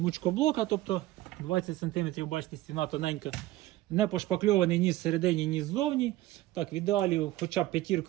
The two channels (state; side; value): quieter; left; 16.5 dB